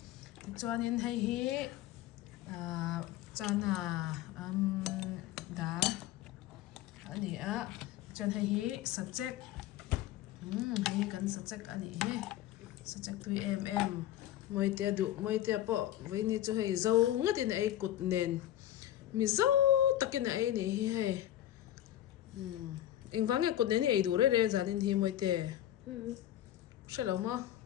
cho nên hay chana dar ani a chan hi subject hi kan subject ani he subject tu moi te po với ni cho hay dâu ngắt tin ai cụt nền mi dâu takin ai ni hi hay in vang cụt nền ai đủ re za din hi moi te sẽ lâu mà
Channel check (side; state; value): right; quieter; 12.8 dB